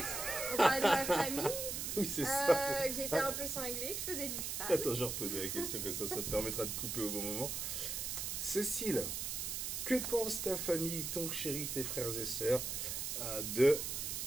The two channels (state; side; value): noise; right; hiss, 3 dB below the sound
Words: On parlait de ma famille, Oui, c'est ça. que j'étais un peu cinglée, que je faisais du cheval. Attends, je reposais la question comme ça me permettra de couper au bon moment. Cécile, que pense ta famille, ton chéri, tes frères et sœurs de